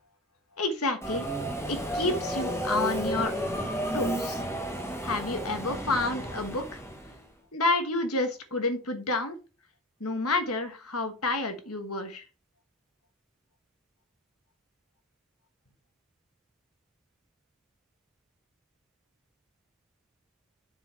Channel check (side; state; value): both; normal; correlation 0.31